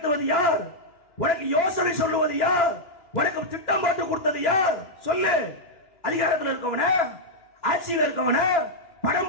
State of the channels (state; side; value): late; right; 2.9 ms